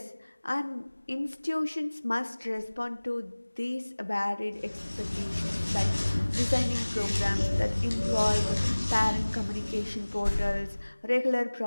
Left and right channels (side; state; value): both; inverted; correlation -1.00